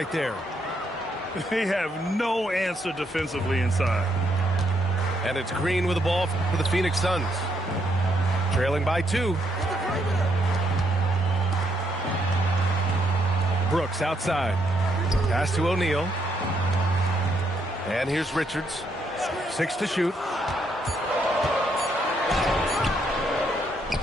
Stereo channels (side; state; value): both; normal; correlation 0.75